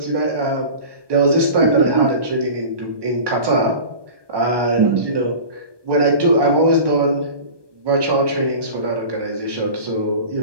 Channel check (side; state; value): left; late; 1.2 ms